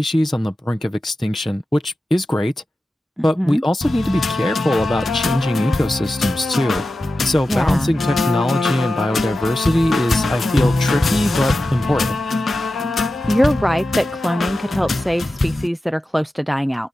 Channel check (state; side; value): normal; both; correlation 0.93